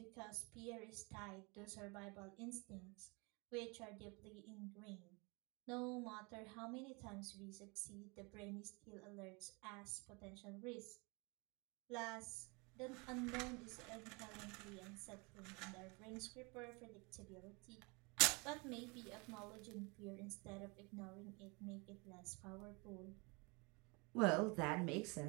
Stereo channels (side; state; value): left; quieter; 29.1 dB